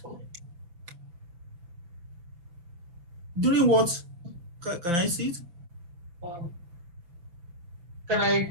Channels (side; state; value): left; late; 5.7 ms